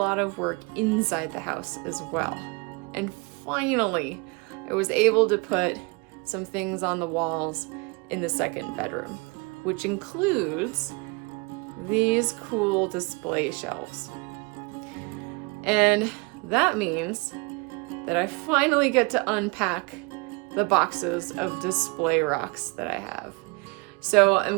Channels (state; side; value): quieter; left; 29.1 dB